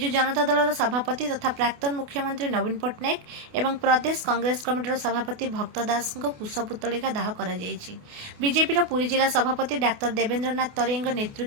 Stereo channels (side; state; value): left; late; 28 ms